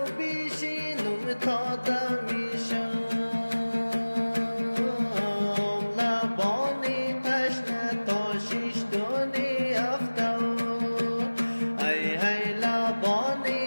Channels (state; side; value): inverted; both; correlation -1.00